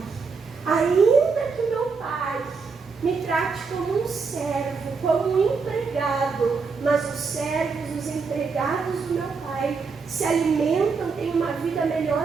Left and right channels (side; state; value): left; quieter; 4.9 dB